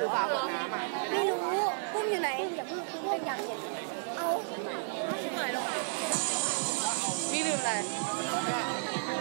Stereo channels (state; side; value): silent; left; digital silence